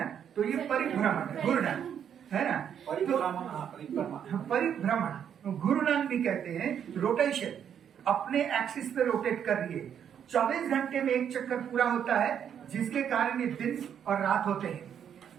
तो ये परिभ्रमण, घूर्णन, है ना। परिभ्रमण, घूर्णन भी कहते हैं, रोटेशन, अपने एक्सिस पे रोटेट कर रही है। 24 घंटे में एक चक्कर पूरा होता है, जिसके कारण ये दिन और रात होते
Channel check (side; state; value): left; quieter; 8.6 dB